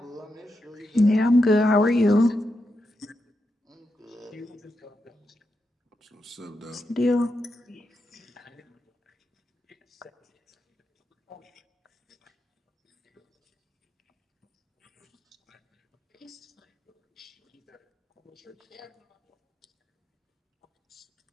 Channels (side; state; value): both; normal; correlation 0.86